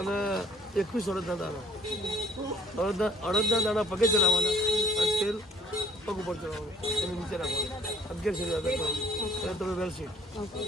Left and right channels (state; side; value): normal; both; correlation 0.59